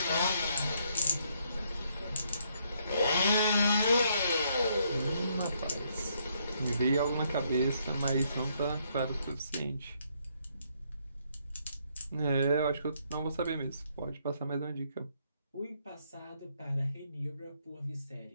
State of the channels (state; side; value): inverted; both; correlation -0.72